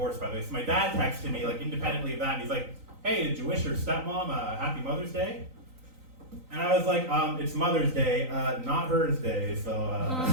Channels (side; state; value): left; late; 3.9 ms